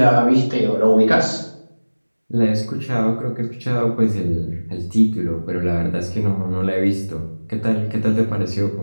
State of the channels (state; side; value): inverted; both; correlation -1.00